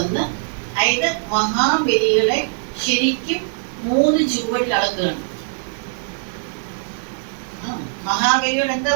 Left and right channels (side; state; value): left; silent; digital silence